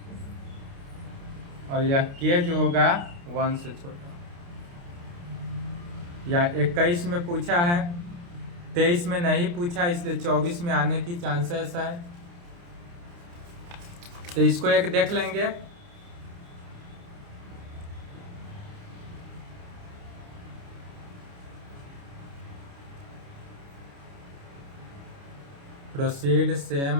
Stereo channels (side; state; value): left; late; 29 ms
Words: और यह k जो होगा 1 से छोटा। या 21 में पूछा है, 23 में नहीं पूछा, इसलिए 24 में आने की चांसेस है, तो इसको एक देख लेंगे। proceed